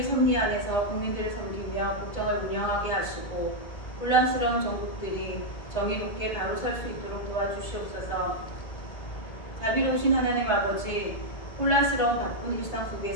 섭리 안에서 국민들을 섬기며 국정을 운영하게 하시고 혼란스러운 정국들이 정의롭게 바로 설 수 있도록 도와주시옵소서. 자비로우신 하나님 아버지, 혼란스러운 바쁜 일상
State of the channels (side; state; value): right; late; 1.8 ms